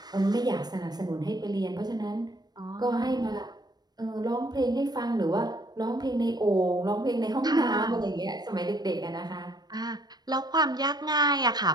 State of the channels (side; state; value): left; late; 0.19 ms